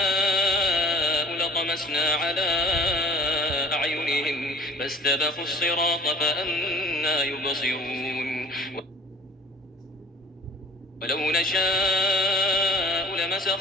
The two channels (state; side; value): normal; both; correlation 0.48